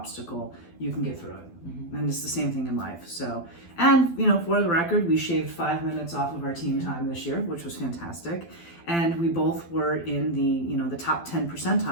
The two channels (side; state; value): right; late; 12 ms